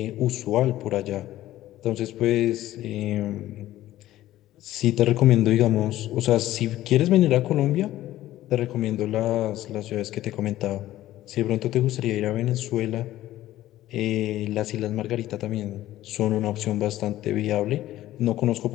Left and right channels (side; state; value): right; quieter; 14.5 dB